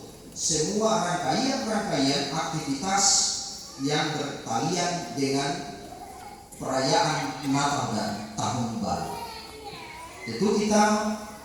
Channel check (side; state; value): both; identical; correlation 1.00